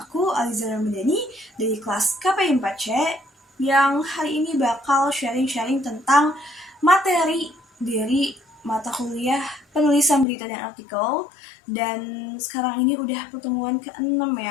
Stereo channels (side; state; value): right; drops out; at 10.2 s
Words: aku, Aliza Ramadhani dari kelas KPI 4C yang hari ini bakal sharing-sharing tentang materi dari mata kuliah penulisan berita dan artikel. Dan sekarang ini udah pertemuan ke-6